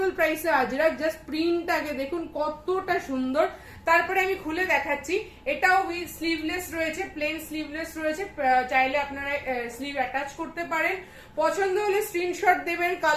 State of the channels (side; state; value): both; identical; correlation 1.00